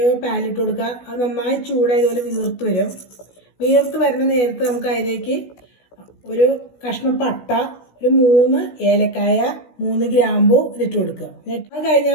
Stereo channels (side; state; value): right; late; 16 ms